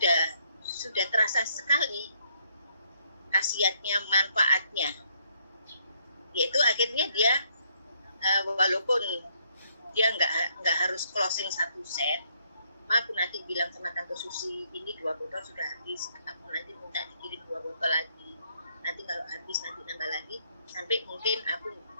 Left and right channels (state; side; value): inverted; both; correlation -0.70